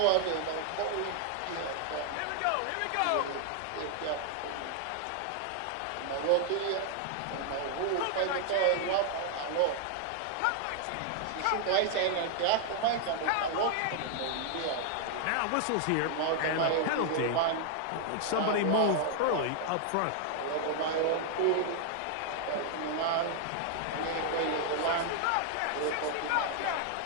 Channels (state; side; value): different; both; correlation 0.00